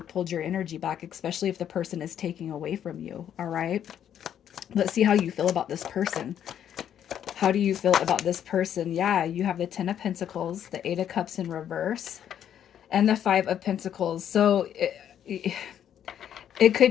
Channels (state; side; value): quieter; right; 9.7 dB